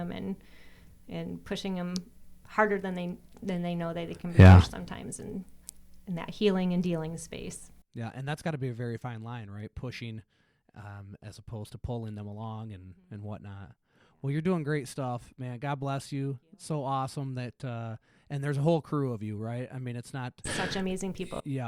and pushing them harder than they know that they can be pushed sometimes in that healing and dealing space. Yeah, and that's got to be a very fine line, right? Pushing as opposed to pulling them along and whatnot. Well, you're doing great stuff, man. God bless you. It's so awesome that, and there's a whole crew of you, right? I mean, it's not such amazing people.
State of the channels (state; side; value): identical; both; correlation 1.00